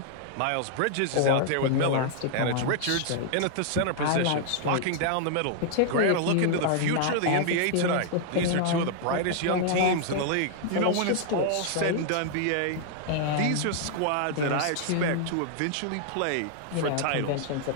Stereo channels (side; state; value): both; different; correlation 0.00